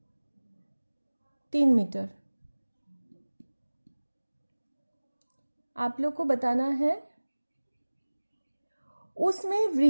3 मीटर। आप लोग को बताना है उसमें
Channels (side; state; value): both; inverted; correlation -1.00